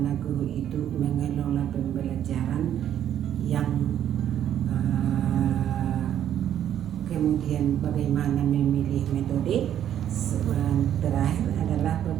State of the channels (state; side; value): quieter; left; 10.5 dB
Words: guru itu mengelola pembelajaran yang kemudian bagaimana memilih metode. Terakhir adalah